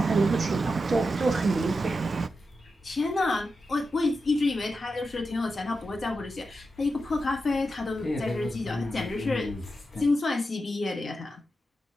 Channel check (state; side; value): normal; both; correlation 0.89